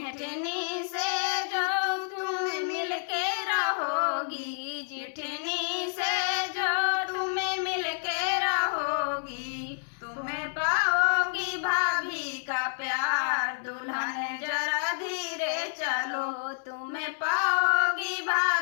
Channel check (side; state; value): right; silent; digital silence